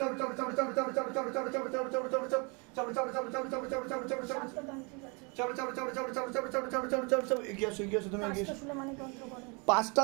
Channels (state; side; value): quieter; left; 32.1 dB